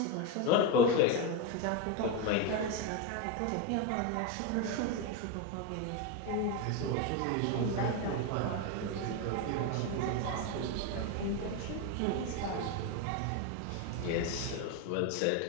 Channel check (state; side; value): different; both; correlation 0.03